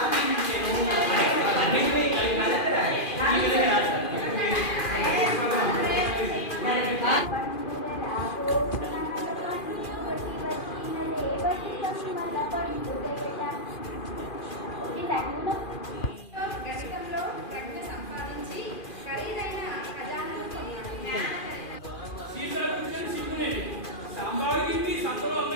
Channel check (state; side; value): late; right; 2.4 ms